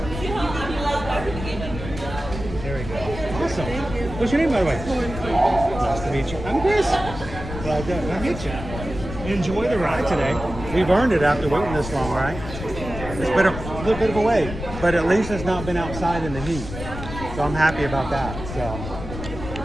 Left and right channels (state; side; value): noise; left; rumble, 9 dB below the sound